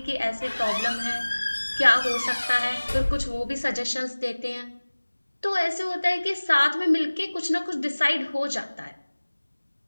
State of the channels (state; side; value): inverted; both; correlation -1.00